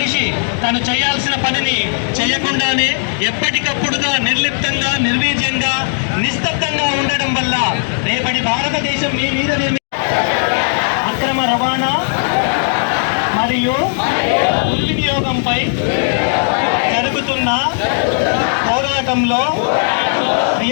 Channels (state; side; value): silent; right; digital silence